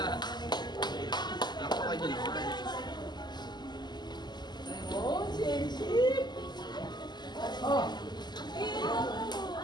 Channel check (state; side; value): late; right; 0.21 ms